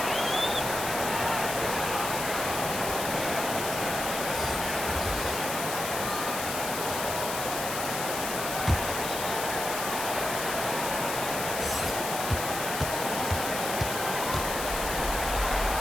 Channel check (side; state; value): left; noise; hiss, 5 dB below the sound